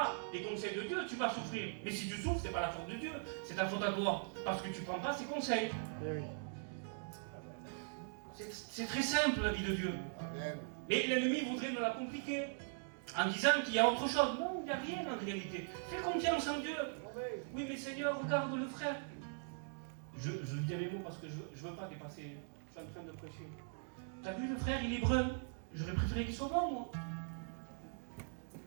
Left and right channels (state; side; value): silent; left; digital silence